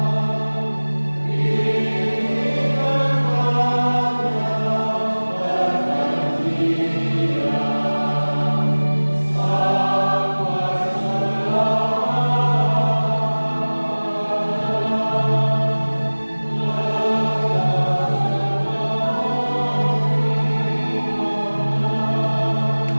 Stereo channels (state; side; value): inverted; both; correlation -1.00